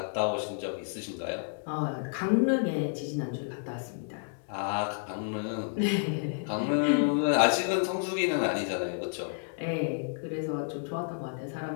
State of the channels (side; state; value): right; silent; digital silence